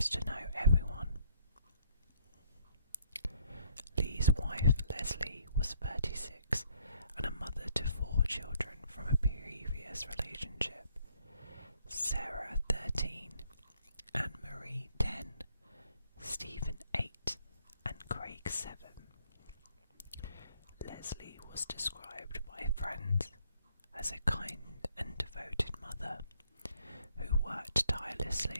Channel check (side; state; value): both; inverted; correlation -0.66